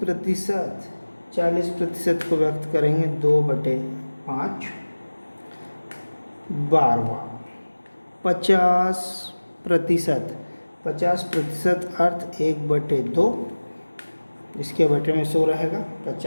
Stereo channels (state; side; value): inverted; both; correlation -1.00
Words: 40% को व्यक्त करेंगे 2/5। 12वां 50%, 50% अर्थ 1/2, इसके बटे में 100 रहेगा।